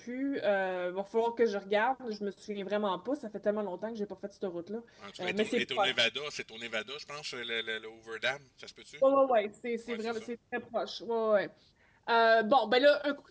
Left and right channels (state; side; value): identical; both; correlation 1.00